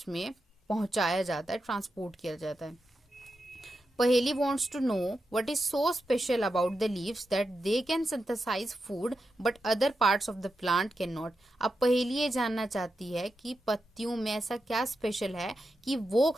में पहुंचाया जाता है, ट्रांसपोर्ट किया जाता है। पहेली wants to know what is so special about the leaves that they can synthesize food but other parts of the plant cannot। अब पहेली ये जानना चाहती है कि पत्तियों में ऐसा क्या स्पेशल है कि वो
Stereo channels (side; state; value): both; normal; correlation 0.88